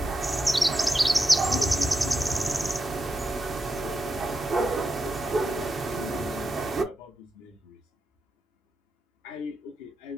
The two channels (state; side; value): normal; both; correlation 0.87